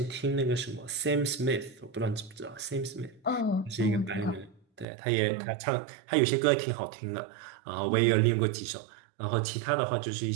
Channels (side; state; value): left; drops out; at 4.9 s